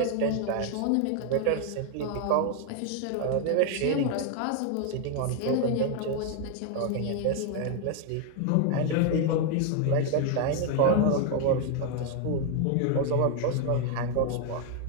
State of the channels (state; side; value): different; both; correlation 0.00